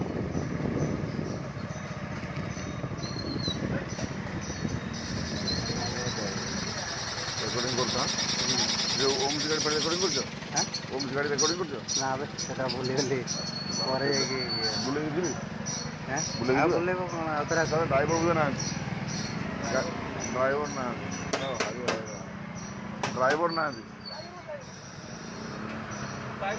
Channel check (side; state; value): both; identical; correlation 1.00